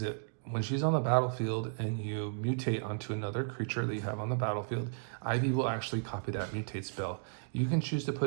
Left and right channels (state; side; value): silent; left; digital silence